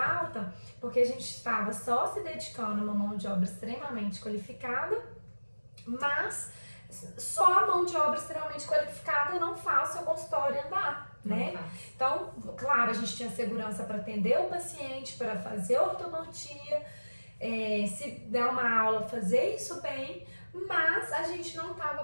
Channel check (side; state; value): both; inverted; correlation -1.00